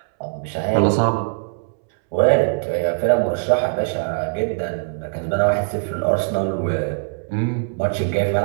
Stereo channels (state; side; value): silent; left; 65 dB below the other